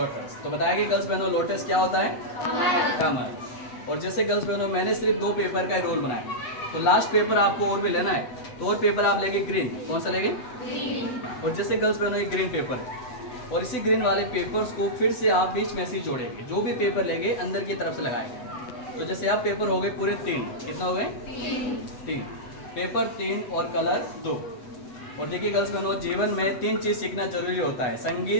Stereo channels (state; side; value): late; right; 8.1 ms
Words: तो बताया कि गर्ल्स बहनों लोटस क्या होता है? कमल। और जैसे गर्ल्स बहनों मैंने सिर्फ दो पेपर का रोल बनाया, तो लास्ट पेपर आपको और भी लेना है, तो और पेपर आप लेंगे ग्रीन। कौन सा लेंगे? ग्रीन। और जैसे गर्ल्स बहनों ये ग्रीन पेपर है, और इसी ग्रीन वाले पेपर्स को फिर से आप बीच में से जोड़ेंगे। जो भी पेपर लेंगे अंदर की तरफ से लगाएंगे। तो जैसे आप पेपर हो गए पूरे तीन। कितना हो गए? तीन। पेपर तीन और कलर दो। और देखिए गर्ल्स बहनों जीवन में तीन चीज़ सीखना जरूरी होता है,